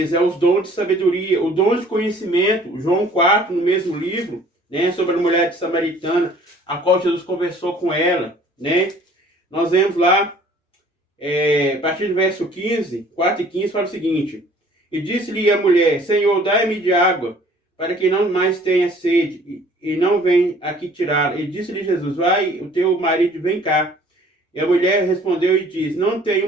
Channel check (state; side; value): normal; both; correlation 0.54